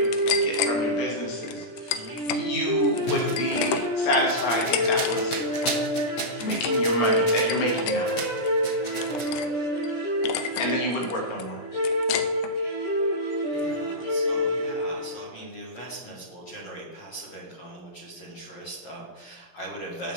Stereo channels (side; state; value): right; late; 17 ms